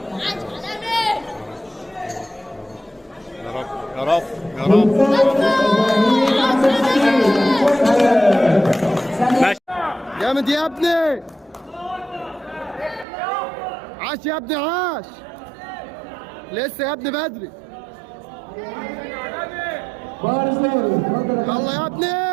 يا رب يا رب ماشي. جامد يا ابني، عاش يا ابني عاش، لسه يا ابني بدري، يلا يا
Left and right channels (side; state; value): left; drops out; at 13.1 s